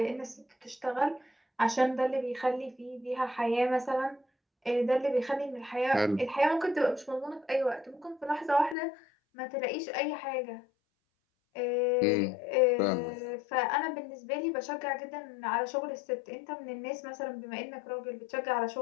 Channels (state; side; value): drops out; right; at 8.8 s